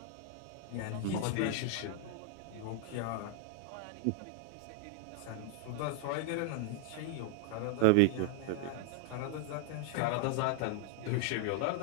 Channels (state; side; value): different; both; correlation -0.01